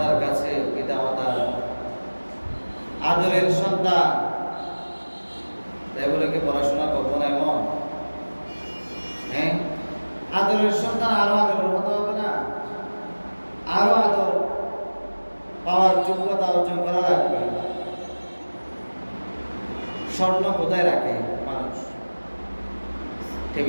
কাছে, পিতামাতার আদরের সন্তান, তাই বলে কি পড়াশোনা করবো না এমন? হ্যাঁ, আদরের সন্তান আরো আদরের হতে হবে না? আরো আদর পাওয়ার যোগ্যতা অর্জন করা লাগবে। স্বর্ণ কোথায় রাখে মানুষ?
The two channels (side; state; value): both; inverted; correlation -1.00